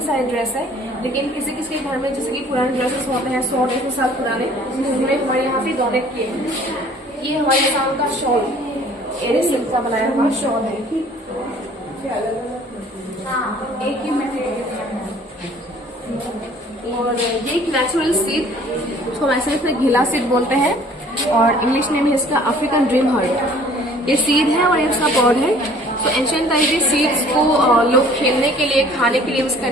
सारे ड्रेस है। लेकिन किसी किसी के घर में जैसे कि पुराने ड्रेसेस होते हैं 100-150 साल पुराने, उन्होंने हमारे यहाँ पे डोनेट किए हैं। ये हमारे आसाम का शॉल एरे सिल्क का बनाया हुआ शॉल है। एक ही और ये एक नेचुरल सीड, उसको वैसे इसमें घिला सीड बोलते हैं और इंग्लिश नेम है इसका अफ्रीकन ड्रीम हार्ट। ये सीड है और ये उसका पॉड है। तो एंशिएंट टाइम में सीड्स को लोग खेलने के लिए, खाने के लिए यूज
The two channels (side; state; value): both; normal; correlation 0.53